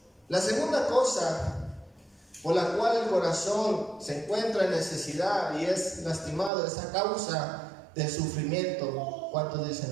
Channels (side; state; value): left; drops out; at 6.5 s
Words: La segunda cosa por la cual el corazón se encuentra en necesidad y es lastimado es a causa del sufrimiento. ¿Cuántos dicen